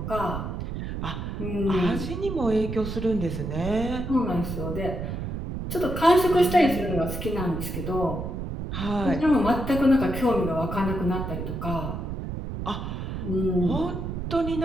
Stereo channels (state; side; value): noise; right; rumble, 5 dB below the sound